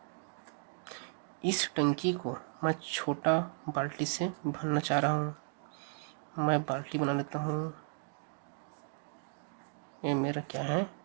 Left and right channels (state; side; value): silent; left; 54 dB below the other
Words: इस टंकी को मैं छोटा बाल्टी से भरना चाह रहा हूँ। मैं बाल्टी बना लेता हूँ, ये मेरा क्या है,